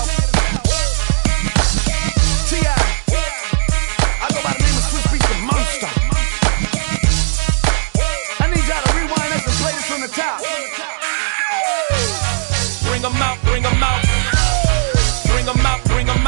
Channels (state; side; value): silent; left; digital silence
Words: T.I. I go by the name of Swiss Beats the Monster. I need y'all to rewind this and play this from the top. Bring 'em out, bring 'em out. Bring 'em out, bring 'em